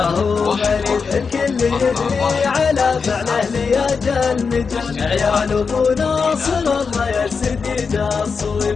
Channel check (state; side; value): quieter; right; 5.3 dB